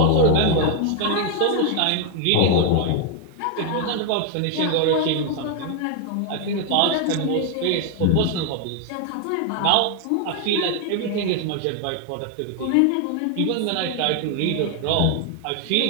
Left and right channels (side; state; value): both; different; correlation 0.01